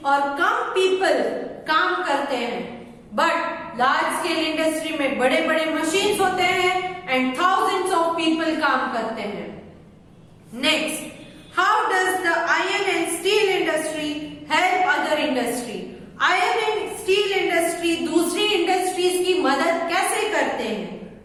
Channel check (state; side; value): identical; both; correlation 1.00